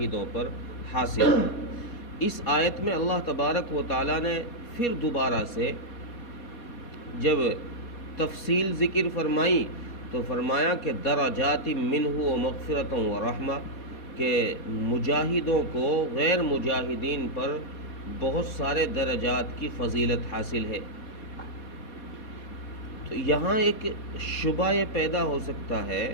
پر حاصل ہے۔ اس آیت میں اللہ تبارک و تعالیٰ نے پھر دوبارہ سے جب تفصیل ذکر فرمائی تو فرمایا کہ درجات منہ و مغفرۃ و رحمہ، کہ مجاہدوں کو غیر مجاہدین پر بہت سارے درجات کی فضیلت حاصل ہے۔ تو یہاں ایک شبہ یہ پیدا ہوتا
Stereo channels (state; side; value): late; right; 4.2 ms